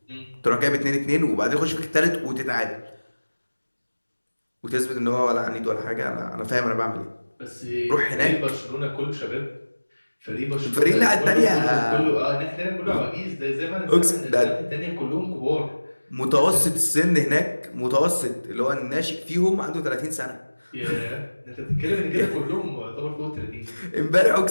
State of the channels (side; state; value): both; inverted; correlation -1.00